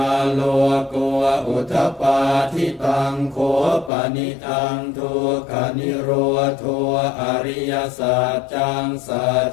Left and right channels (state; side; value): drops out; right; at 3.9 s